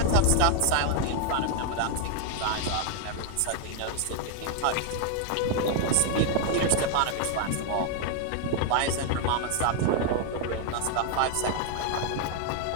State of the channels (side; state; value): both; different; correlation 0.01